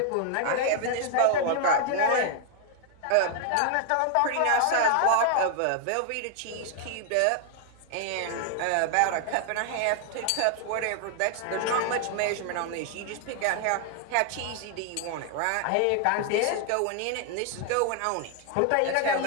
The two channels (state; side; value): different; both; correlation 0.00